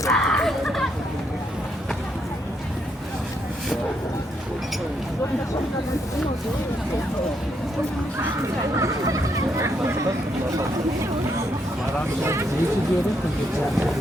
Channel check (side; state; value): both; normal; correlation 0.76